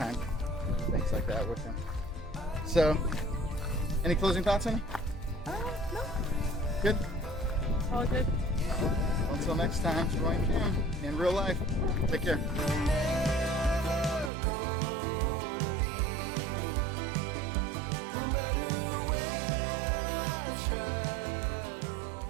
doing things like that with him. So, any closing thoughts, honey? No. Good? All good. Until next time, join Kim in real life. Take care.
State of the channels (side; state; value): left; drops out; at 14.3 s